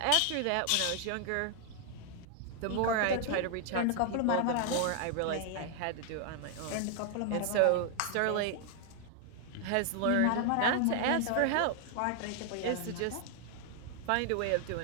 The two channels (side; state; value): both; different; correlation 0.00